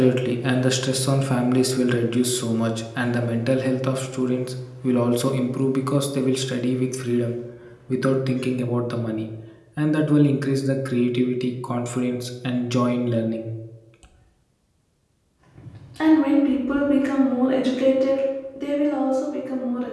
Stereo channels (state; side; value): identical; both; correlation 1.00